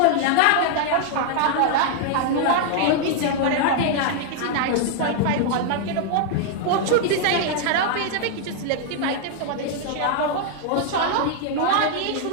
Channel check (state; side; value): different; both; correlation 0.00